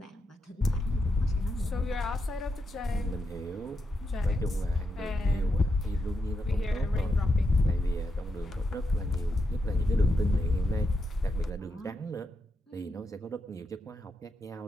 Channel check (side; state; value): both; normal; correlation 0.84